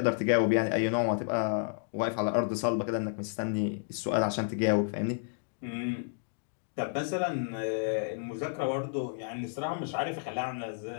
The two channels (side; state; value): right; silent; digital silence